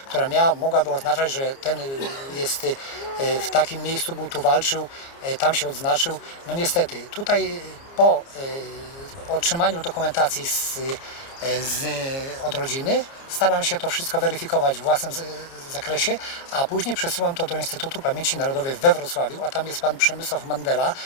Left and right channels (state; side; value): late; right; 29 ms